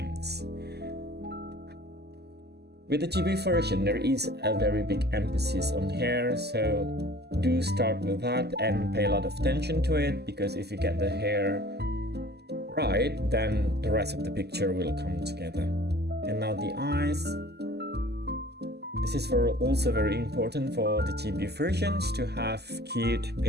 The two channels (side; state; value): left; late; 0.48 ms